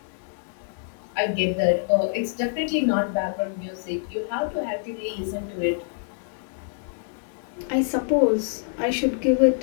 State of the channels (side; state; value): right; silent; digital silence